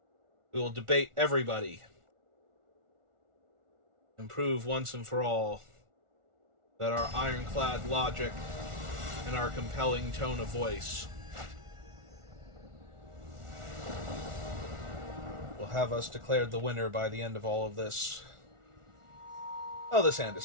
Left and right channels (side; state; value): left; late; 1.4 ms